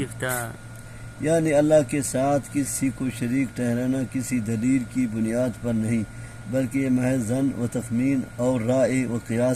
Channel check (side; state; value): both; identical; correlation 1.00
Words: یعنی اللہ کے ساتھ کسی کو شریک ٹھہرانا کسی دلیل کی بنیاد پر نہیں، بلکہ یہ محض ظن و تخمین اور رائے و